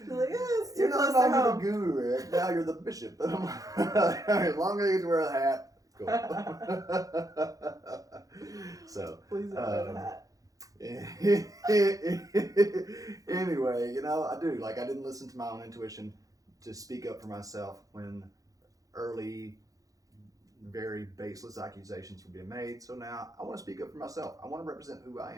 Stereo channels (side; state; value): left; late; 0.17 ms